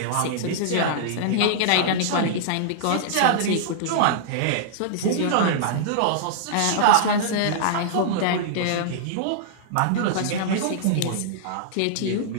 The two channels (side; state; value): both; different; correlation -0.02